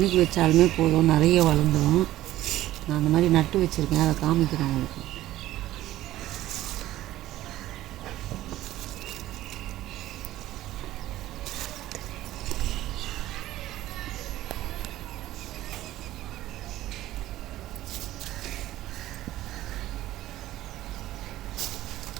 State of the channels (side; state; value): left; quieter; 15.0 dB